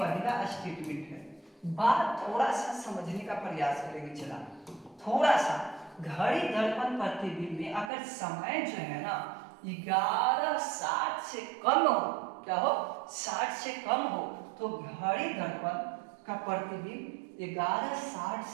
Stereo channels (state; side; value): drops out; left; at 7.9 s